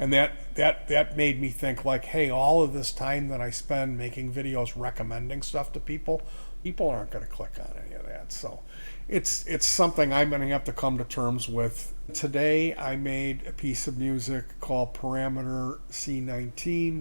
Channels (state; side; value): inverted; both; correlation -1.00